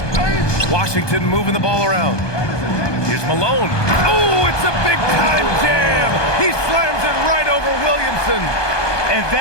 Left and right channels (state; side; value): late; right; 1.2 ms